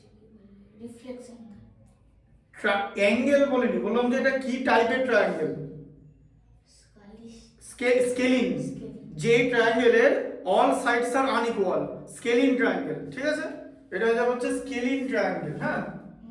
রিফ্লেকশন। অ্যাঙ্গেল বলিনি, বললাম যে এটা কি টাইপের ট্রায়াঙ্গেল। স্কেলিং, যে ট্রায়াঙ্গেলের all sides are unequal, scaling triangle. ঠিক আছে, এটা হয়ে যাবে হচ্ছে স্কেলিং ট্রায়াঙ্গেল। হ্যাঁ,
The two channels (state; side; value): identical; both; correlation 1.00